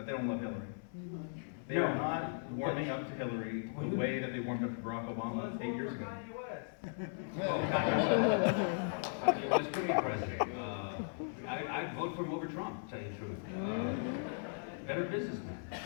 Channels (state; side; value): silent; right; digital silence